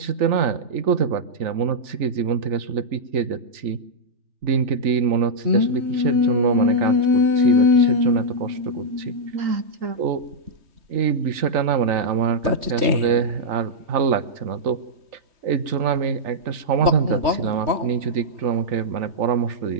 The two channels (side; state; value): left; late; 3.4 ms